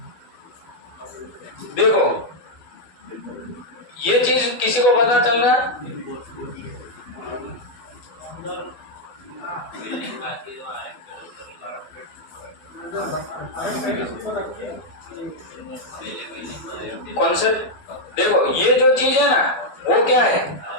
देखो ये चीज किसी को पता चल रहा है? कॉन्सेप्ट देखो, ये जो चीज है ना वो क्या है?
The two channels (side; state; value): right; late; 12 ms